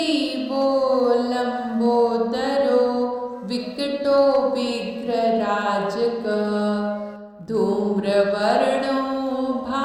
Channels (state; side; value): identical; both; correlation 1.00